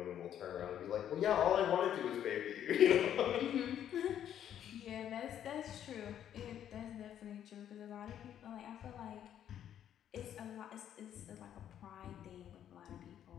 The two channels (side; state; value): right; quieter; 10.2 dB